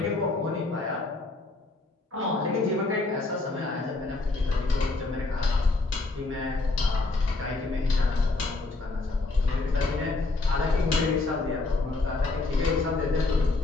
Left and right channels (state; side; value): quieter; right; 3.4 dB